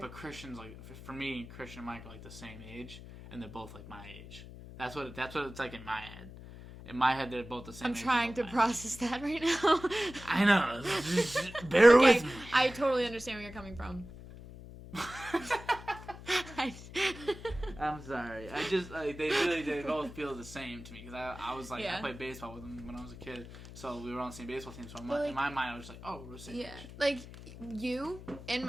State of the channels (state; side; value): noise; left; hum, 15 dB below the sound